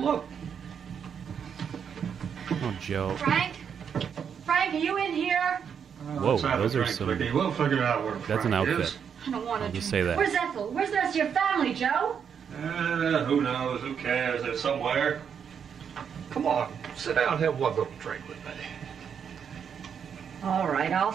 Oh, Joe. Frank? Frank, are you in here? Whoa, those are some. We'll figure out where That's an Frank outfit. is. I don't want I'll to. just say that. Where's Ethel? Where's the rest of your family, Joe? Who knows? Who cares? They're somewhere. Come on, sit down and have one little drink with me. All right, I'll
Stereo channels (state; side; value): quieter; left; 7.4 dB